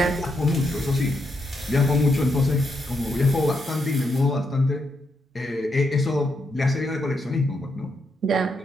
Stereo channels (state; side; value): normal; both; correlation 0.81